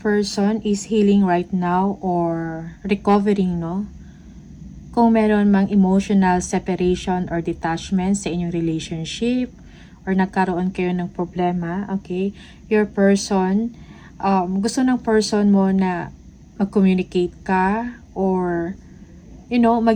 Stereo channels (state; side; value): identical; both; correlation 1.00